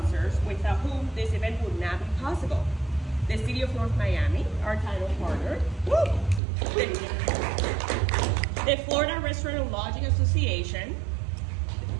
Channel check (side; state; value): left; drops out; at 6.4 s